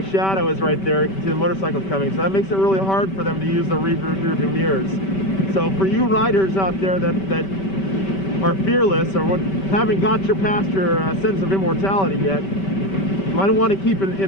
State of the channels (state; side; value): late; right; 5.2 ms